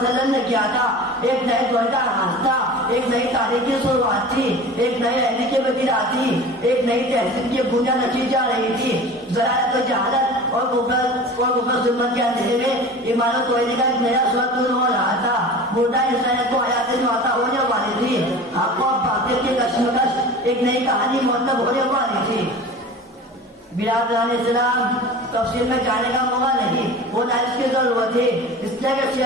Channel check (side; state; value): both; normal; correlation 0.37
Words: نے کیا تھا ایک نئے دور کا آغاز تھا, ایک نئی تاریخ کی شروعات تھی, ایک نئے عہد کی بدلا تھی, ایک نئی تہذیب کی بنیاد رکھی جا رہی تھی. ذرائع و جہالت اور کفر ظلمت کے اندھیرے میں ایمان و توحید کا ایک نیا سورج نور ہو رہا تھا. مردہ انسانیت کو حیات نوتا ہونے والی تھی. حق و باطل کی کشمکش ایک نئی کہانی مرتب ہونے والی تھی. برادران اسلام, تفصیل میں جانے کا موقع نہیں ہوتا, اس کی ضرورت ہے. اس لیے کہ